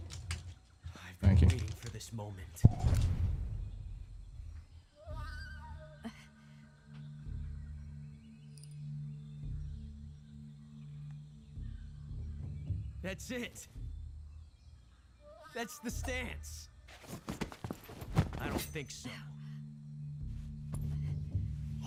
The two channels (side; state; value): both; identical; correlation 1.00